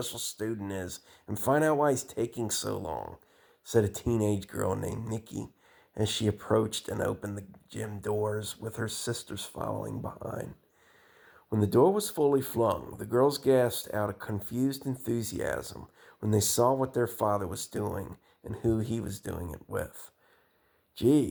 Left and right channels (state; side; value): identical; both; correlation 1.00